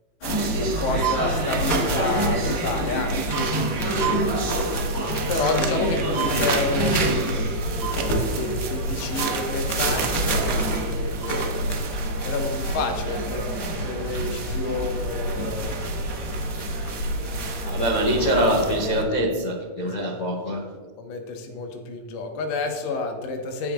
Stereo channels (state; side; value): late; right; 18 ms